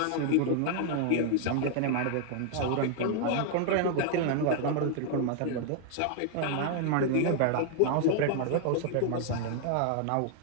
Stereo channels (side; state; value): both; different; correlation 0.00